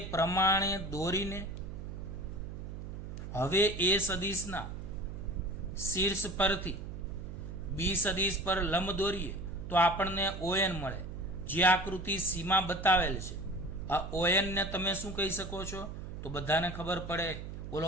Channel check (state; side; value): noise; right; hum, 9 dB below the sound